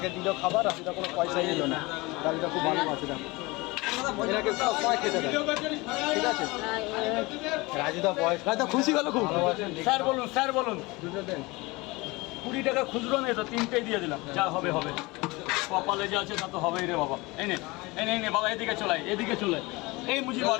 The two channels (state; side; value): quieter; right; 23.4 dB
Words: দিল খাবার, রাজুদা কোনো পয়সাই নিল না। রাজুদা খুব ভালো আছে, দেখো এনাকে সবাই খেতে দেয়, ঠিক আছে? রাজুদা বয়স, রাজুদা খুশি গেল খুব। স্যার বলুন, স্যার বলুন। দুটো দেন। 20 টাকা খুচরো নেই তো, 3টেই দিয়ে দিলাম। যা হবে হবে, কপালে যা আছে তা তো হবেই রে বাবা। এনে এনে এনে বাবা, এদিকে চলাই, এদিকে চলে। এই মুজি বল,